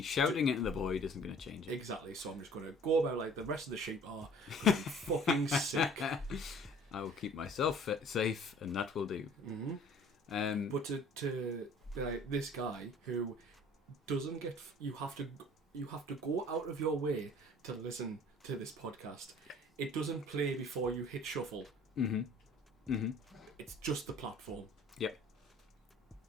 shouting it in the void isn't going to change it. Exactly. So I'm just going to go about like the rest of the sheep are. 'Cause I'm fucking sick. I will keep myself safe, and that will do. But to be like this guy who doesn't get, you have to go out of your way to listen to this podcast. It doesn't play before you hit shuffle. It's just the platform. Yep.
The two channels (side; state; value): both; normal; correlation 0.51